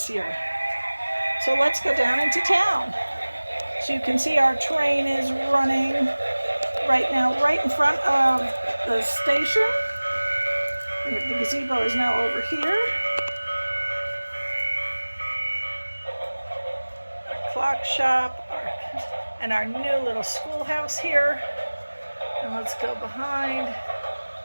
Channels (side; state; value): both; inverted; correlation -1.00